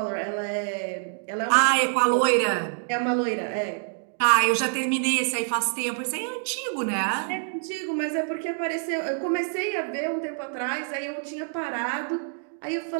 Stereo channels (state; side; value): silent; left; digital silence